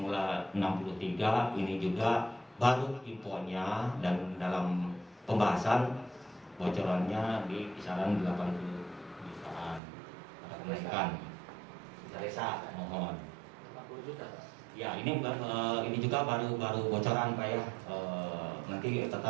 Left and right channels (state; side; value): drops out; left; at 9.8 s